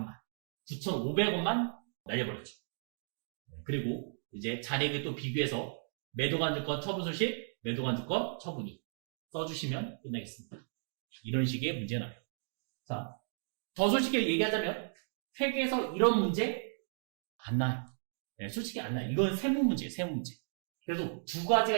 9,500원만 날려버렸죠. 그리고 이제 잔액을 또 비교해서 매도관증권 처분 손실, 매도관증권 처분이 써주시면 끝나겠습니다. 이런 식의 문제가 나요. 자, 더 솔직히 얘기하자면 회계에서 이런 문제 안 나요. 네, 솔직히 안 나요. 이건 세무 문제예요. 세무 문제. 그래도 두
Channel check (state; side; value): silent; left; digital silence